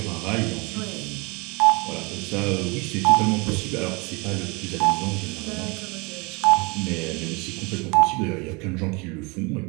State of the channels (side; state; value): left; quieter; 28.1 dB